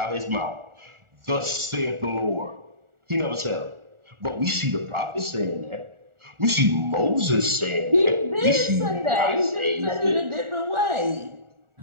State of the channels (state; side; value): late; left; 1.4 ms